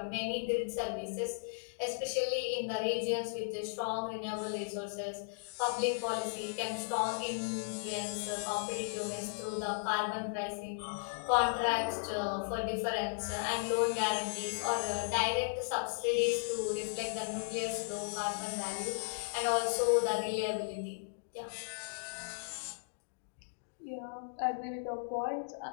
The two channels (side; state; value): right; silent; digital silence